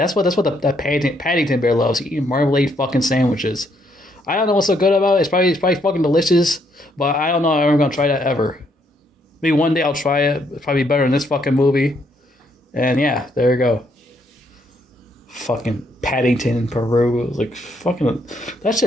what the Paddington bear loves. He eats marmalade fucking sandwiches. I don't know what's so good about it. It's probably fucking delicious, but I don't know if I'm ever going to try that ever. Maybe one day I'll try it. It's probably better than this fucking movie. And yeah, there you go. Fucking Paddington in Peru. Like, fucking, that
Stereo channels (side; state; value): both; normal; correlation 0.72